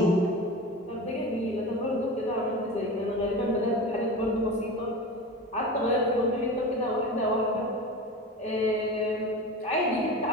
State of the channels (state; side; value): normal; both; correlation 0.29